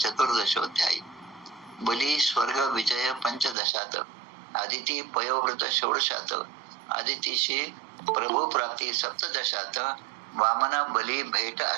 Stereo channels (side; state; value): left; drops out; at 3.6 s